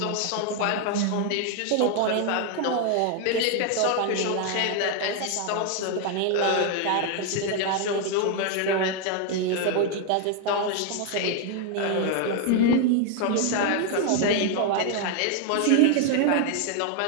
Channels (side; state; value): both; different; correlation 0.01